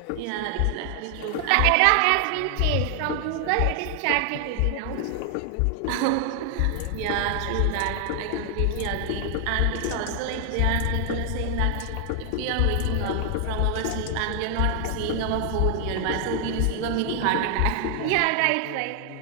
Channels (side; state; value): both; different; correlation 0.00